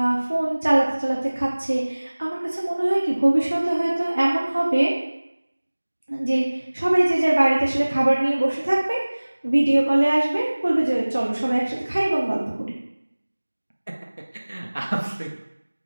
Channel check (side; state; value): both; inverted; correlation -1.00